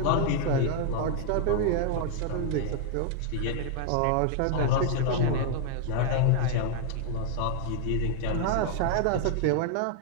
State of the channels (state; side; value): different; both; correlation 0.00